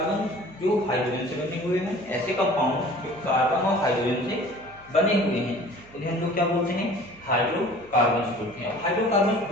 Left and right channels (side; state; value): right; noise; hum, 24 dB below the sound